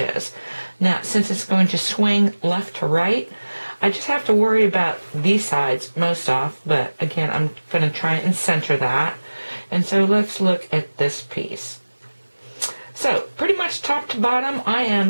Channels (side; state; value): both; inverted; correlation -1.00